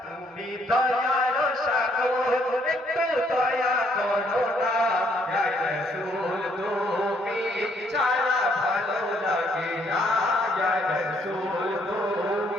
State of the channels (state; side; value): normal; both; correlation 0.68